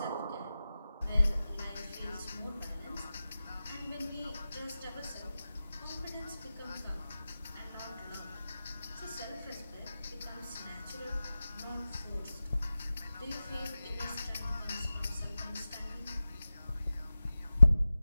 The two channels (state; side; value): inverted; both; correlation -0.95